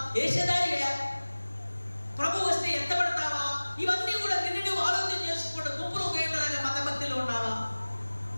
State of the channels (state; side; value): inverted; both; correlation -1.00